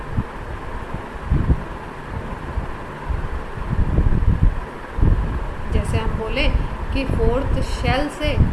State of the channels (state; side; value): identical; both; correlation 1.00